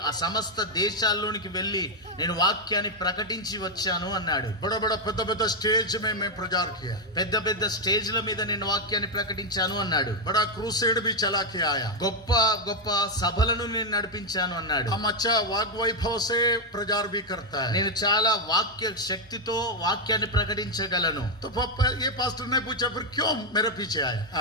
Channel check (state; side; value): normal; both; correlation 0.03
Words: సమస్త దేశాల్లోనికి వెళ్ళి నేను వాక్యాన్ని ప్రకటించి వచ్చాను అన్నాడు. बड़ा बड़ा పెద్ద పెద్ద स्टेज में मैं प्रचार किया. పెద్ద పెద్ద స్టేజ్ల మీద నేను వాక్యాన్ని ప్రకటించాను అన్నాడు. बड़ा क्रूसेड भी चला के आया. గొప్ప గొప్ప సభలను నేను నడిపించాను అన్నాడు. हम अच्छा वाग वैभव से प्रचार भी करता है. నేను చాలా వాక్య శక్తితో వాక్యాన్ని ప్రకటించగలను. तो ये पास्टर ने पूछा फिर क्यों मेरे पीछे आया?